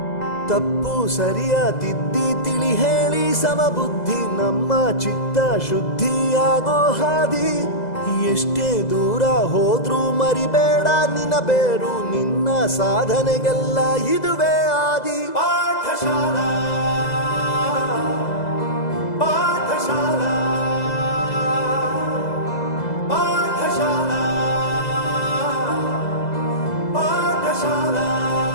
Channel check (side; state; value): right; late; 2.0 ms